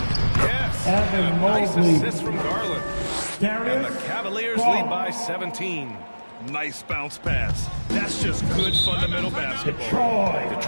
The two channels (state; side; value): inverted; both; correlation -1.00